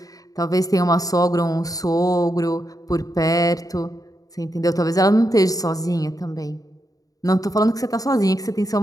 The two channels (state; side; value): late; right; 0.17 ms